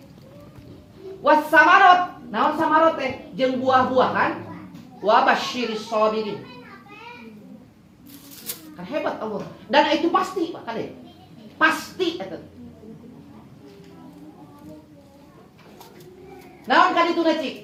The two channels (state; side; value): identical; both; correlation 1.00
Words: Was samarot, naon samarot teh? Jeung buah-buahan. Wa basyiris sabirin. Kan hebat Allah. Dan itu pasti Pak Kade. Pasti eta. Naon kan itu